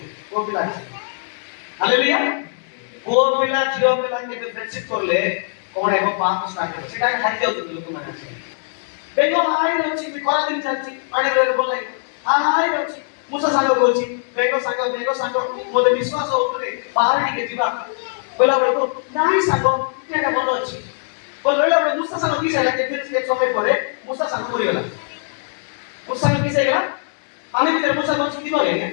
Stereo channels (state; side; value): silent; right; digital silence